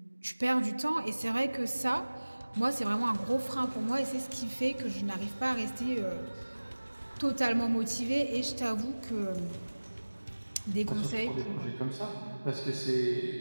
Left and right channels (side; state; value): both; inverted; correlation -1.00